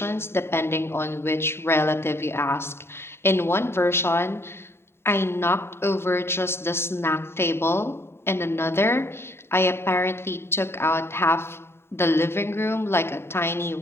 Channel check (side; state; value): right; late; 0.12 ms